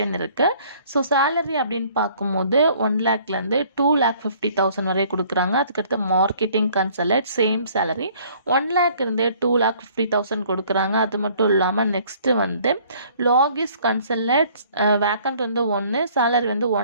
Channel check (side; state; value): both; inverted; correlation -0.57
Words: இருக்குது. ஸோ சேலரி அப்படின்னு பார்க்கும்போது 1 லேக்லேருந்து 2,50,000 வரை கொடுக்குறாங்க. அதுக்கடுத்து marketing consultant same salary 1 lakh இருந்து 2,50,000 கொடுக்குறாங்க. அது மட்டும் இல்லாமல் நெக்ஸ்ட்டு வந்து லாகிஸ் கன்சல்டன்ட் வேக்கண்ட் வந்து 1, சேலரி வந்து